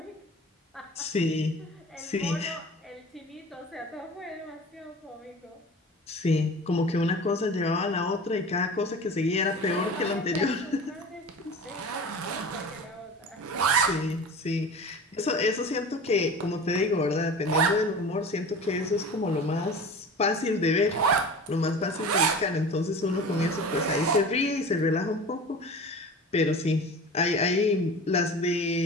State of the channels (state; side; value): normal; both; correlation 0.36